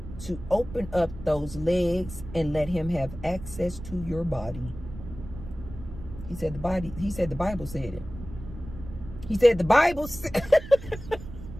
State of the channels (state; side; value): noise; right; rumble, 13 dB below the sound